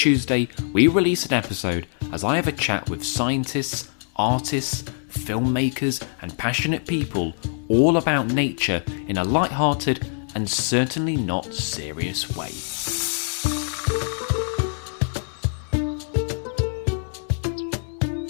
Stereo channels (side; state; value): right; silent; 63 dB below the other